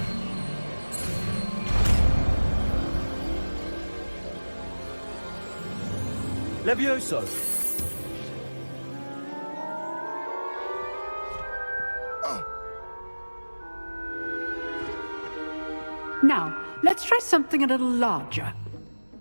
Levioso! Now, let's try something a little larger.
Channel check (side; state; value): both; inverted; correlation -1.00